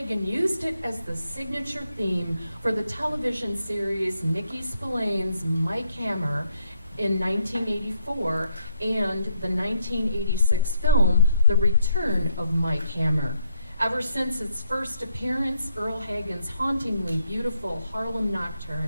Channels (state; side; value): inverted; both; correlation -0.74